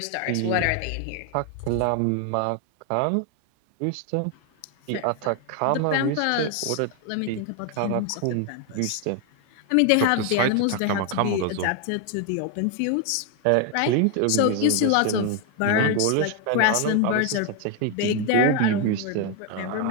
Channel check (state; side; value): different; both; correlation 0.01